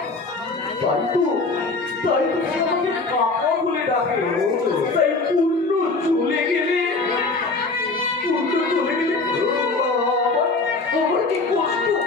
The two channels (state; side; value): quieter; right; 3.6 dB